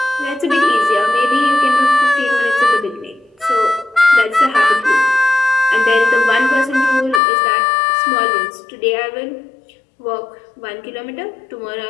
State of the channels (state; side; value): drops out; right; at 7.2 s